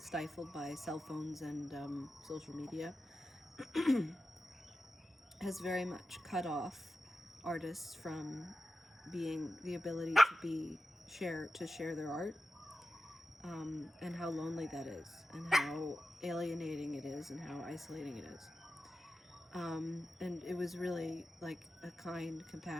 by cell phones and social media, has very much cut off artists from being the ability to share their art, and how lonely that is, and how alienating it is, and how isolating it is. And it was really like a kind,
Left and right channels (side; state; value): both; normal; correlation 0.92